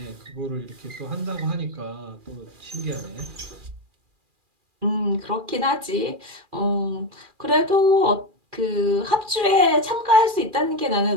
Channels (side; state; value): left; late; 2.4 ms